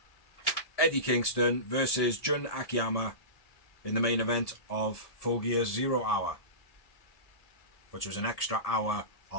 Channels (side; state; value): right; late; 1.7 ms